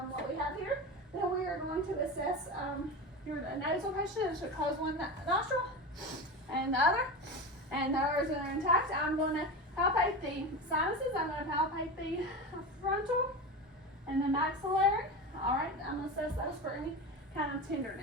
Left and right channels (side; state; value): both; normal; correlation 0.25